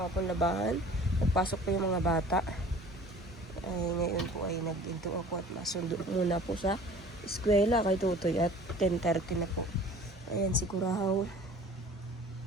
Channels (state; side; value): normal; both; correlation 0.46